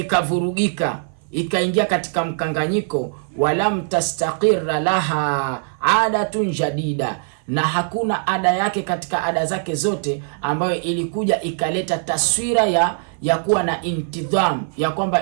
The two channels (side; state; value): left; silent; 56 dB below the other